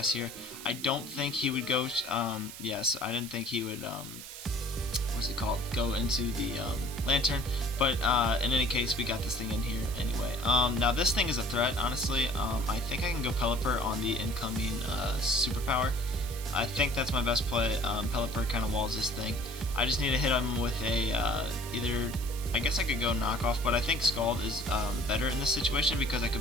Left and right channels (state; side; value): noise; right; hiss, 13 dB below the sound